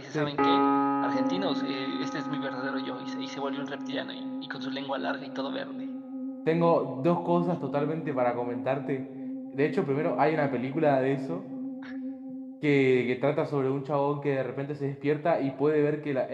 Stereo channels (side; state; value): both; identical; correlation 1.00